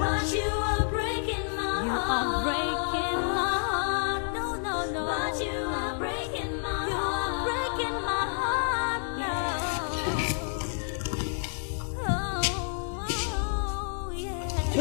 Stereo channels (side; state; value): right; silent; digital silence